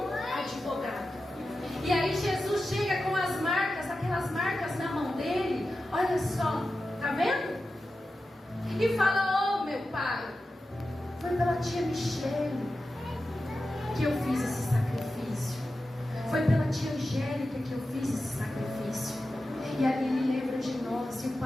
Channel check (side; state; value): both; normal; correlation 0.92